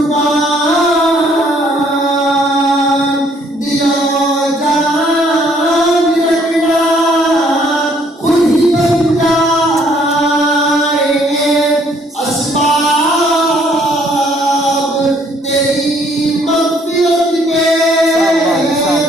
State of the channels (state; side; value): normal; both; correlation 0.64